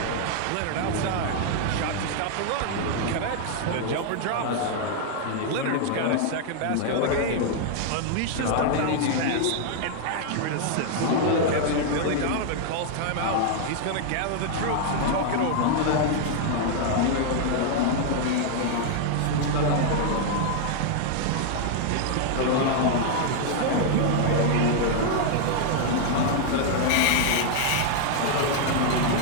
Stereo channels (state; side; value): different; both; correlation 0.00